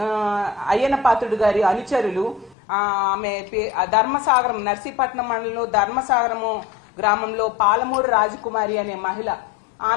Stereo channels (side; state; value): right; drops out; at 2.6 s